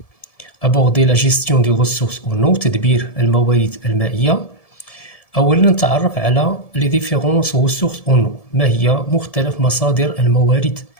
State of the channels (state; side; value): late; right; 1.7 ms